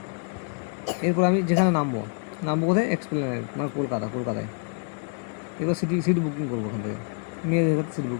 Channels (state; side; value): quieter; right; 39.1 dB